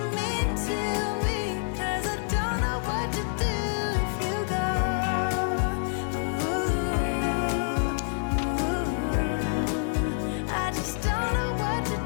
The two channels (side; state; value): right; silent; digital silence